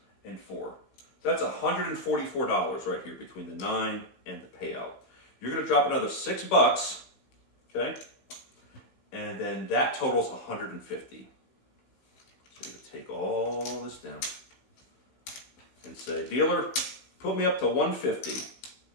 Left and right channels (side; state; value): right; late; 16 ms